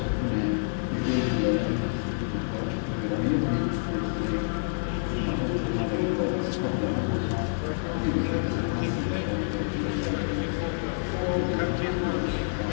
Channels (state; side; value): silent; right; 59 dB below the other